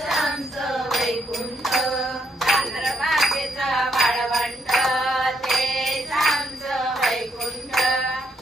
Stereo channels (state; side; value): normal; both; correlation 0.75